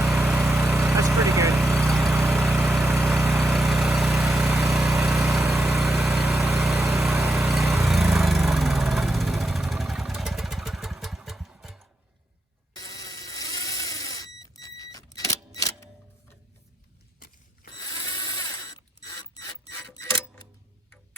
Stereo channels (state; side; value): normal; both; correlation 0.83